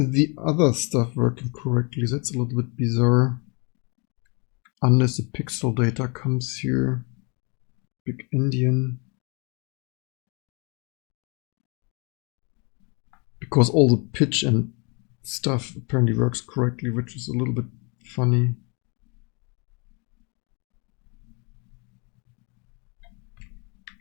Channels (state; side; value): quieter; right; 32.4 dB